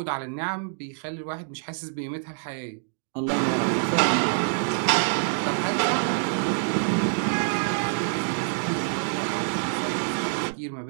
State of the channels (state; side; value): silent; left; digital silence